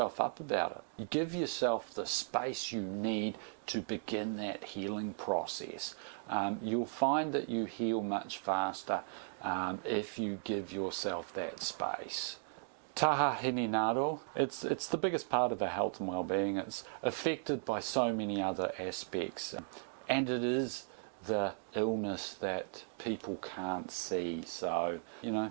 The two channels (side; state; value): left; silent; digital silence